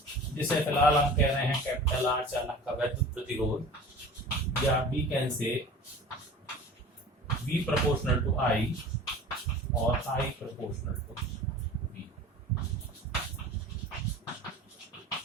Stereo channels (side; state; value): both; normal; correlation 0.40